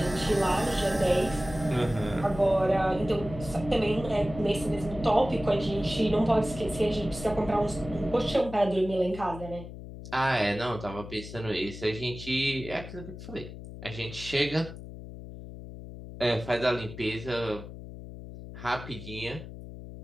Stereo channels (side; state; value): left; noise; hum, 12 dB below the sound